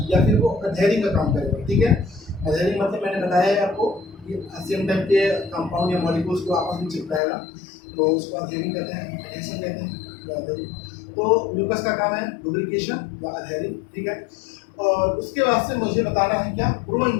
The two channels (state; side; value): drops out; right; at 7.2 s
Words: या फिर वो अधेरिंग का काम करेगा। ठीक है, अधेरिंग मतलब मैंने बताया है आपको कि सेम टाइप के कंपाउंड या मॉलिक्यूल्स को आपस में चिपकाएगा, तो उसको अधेरिंग कहते हैं, एडेशन कहते हैं, तो adhering। तो म्यूकस का काम है लुब्रिकेशन या अधेरिंग। ठीक है, और उसके बाद से मुझे बताना है क्या,